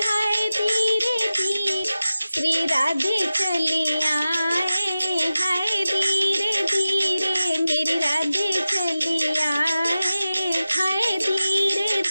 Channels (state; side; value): inverted; both; correlation -0.95